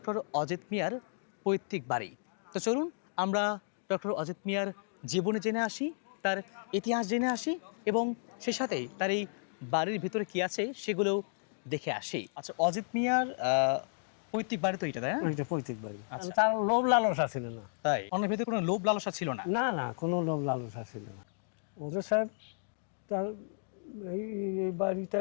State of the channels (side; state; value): right; silent; digital silence